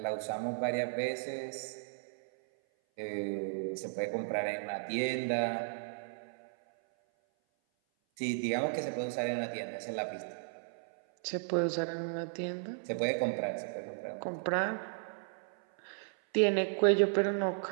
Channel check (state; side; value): silent; left; 54 dB below the other